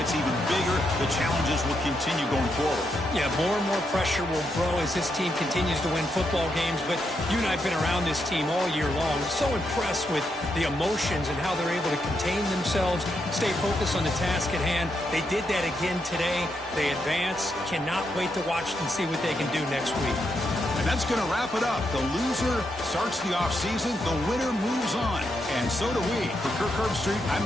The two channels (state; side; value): normal; both; correlation 0.81